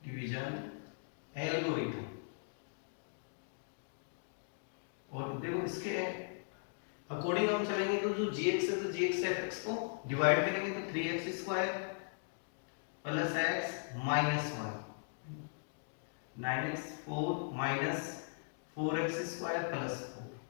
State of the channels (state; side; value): silent; right; digital silence